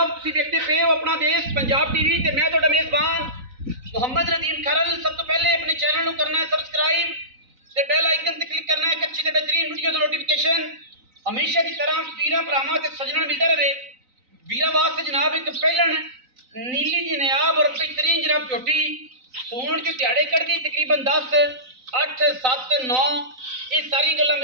तुसीं देखते पे हो अपना देश पंजाब टीवी ते मैं तुहाडा मेज़बान मुहम्मद नदीम खरल। सब तो पहले अपने चैनल को करना है सबसक्राइब ते बेल आइकन ते क्लिक करना है अच्छी ते बेहतरीन वीडियो दा नोटिफिकेशन हमेशा की तरह वीरां भरावां ते सज्जणां मिलदा रहे। वीरां वास्ते जनाब एक पहलन नीली दी नायाब और बेहतरीन जनाब झोटी सूण के दिहाड़े कढ़दी तकरीबन 10 8 7 9 ये सारी गल्लां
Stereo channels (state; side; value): late; left; 3.9 ms